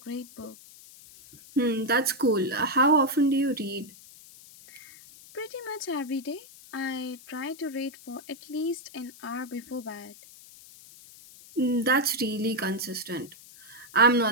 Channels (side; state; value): left; noise; hiss, 20 dB below the sound